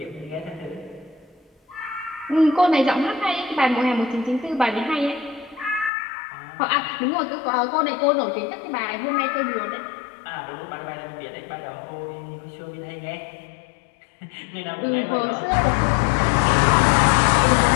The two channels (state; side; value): drops out; right; at 5.9 s